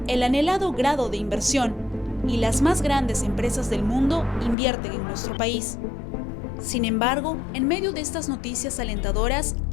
el anhelado grado de inversión y las más grandes empresas del mundo invierten en nuestro país. Sin embargo, en medio de estas noticias alentadoras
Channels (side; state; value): right; drops out; at 4.5 s